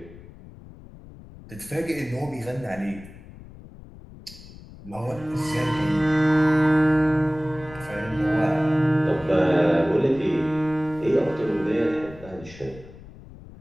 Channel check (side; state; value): left; noise; rumble, 18 dB below the sound